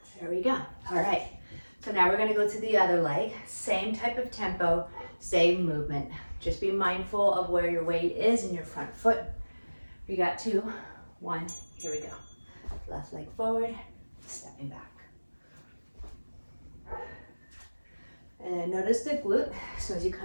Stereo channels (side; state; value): both; inverted; correlation -1.00